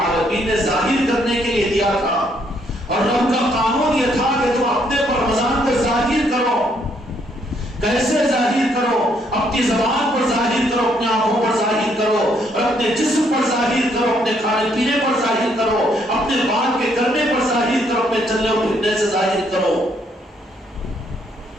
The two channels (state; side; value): normal; both; correlation 0.70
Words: نے ظاہر کرنے کے لیے دیا تھا، اور رب کا قانون یہ تھا کہ تم اپنے پر رمضان کو ظاہر کرو، کیسے ظاہر کرو؟ اپنی زبان پر ظاہر کرو، اپنی آنکھوں پر ظاہر کرو، اور اپنے جسم پر ظاہر کرو، اپنے کھانے پینے پر ظاہر کرو، اپنے بات کے کرنے پر ظاہر کرو، اپنے چلنے اور پھرنے سے ظاہر کرو۔